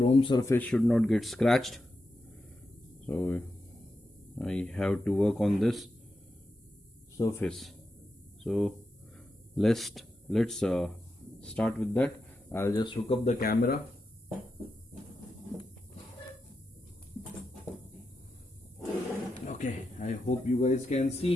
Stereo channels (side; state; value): both; normal; correlation 0.88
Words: surface should not get scratched. So I have to work on this surface. So let's start with that. I'll just hook up the camera. Okay, I hope you guys can